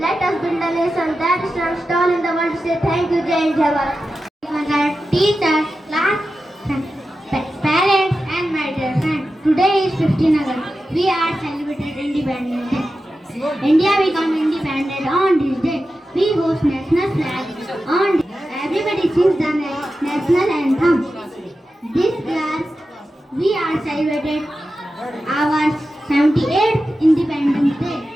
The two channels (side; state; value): both; normal; correlation 0.92